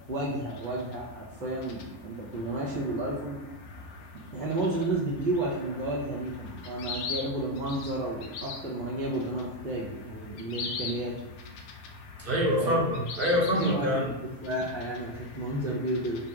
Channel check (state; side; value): late; right; 6.1 ms